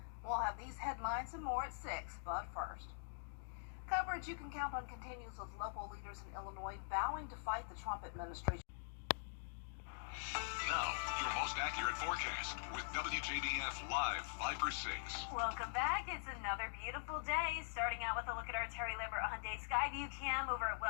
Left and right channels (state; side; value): silent; right; digital silence